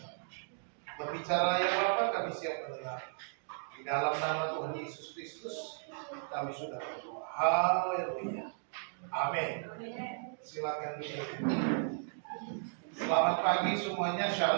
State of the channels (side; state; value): left; silent; digital silence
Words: Berbicaralah ya Bapa, kami siap mendengar. Di dalam nama Tuhan Yesus Kristus kami sudah berdoa. Haleluya. Amin. Silakan duduk. Selamat pagi semuanya.